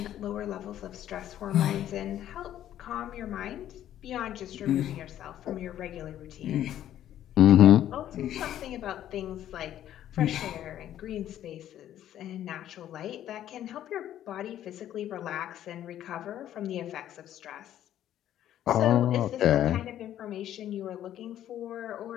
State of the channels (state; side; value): quieter; right; 11.7 dB